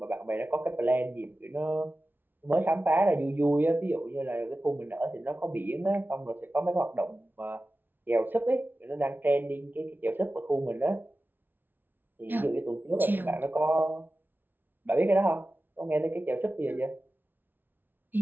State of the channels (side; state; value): left; late; 0.093 ms